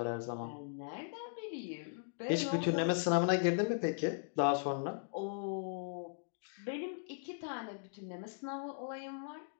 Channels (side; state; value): right; silent; digital silence